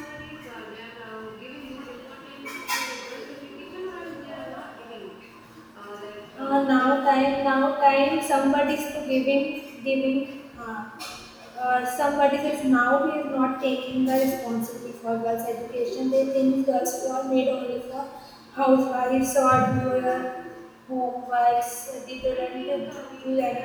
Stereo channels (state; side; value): identical; both; correlation 1.00